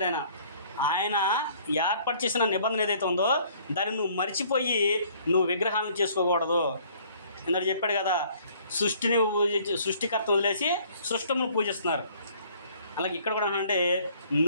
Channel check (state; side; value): inverted; both; correlation -0.58